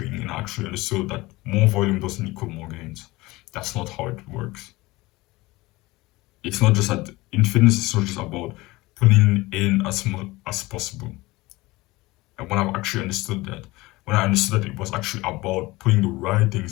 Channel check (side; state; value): right; quieter; 20.7 dB